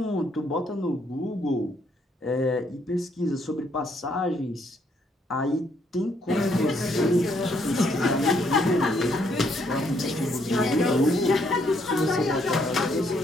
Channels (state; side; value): normal; both; correlation 0.71